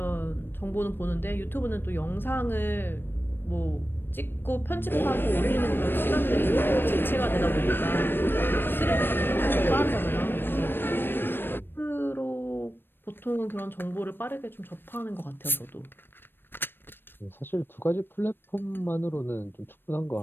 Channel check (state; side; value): late; right; 0.098 ms